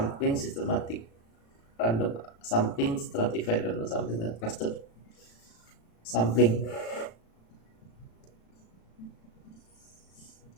systematic random sampling, stratified random sampling, dan cluster sampling.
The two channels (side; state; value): right; late; 35 ms